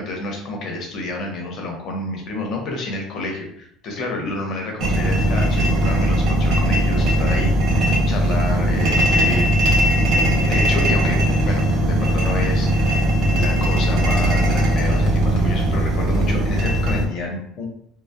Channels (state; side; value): normal; both; correlation 0.67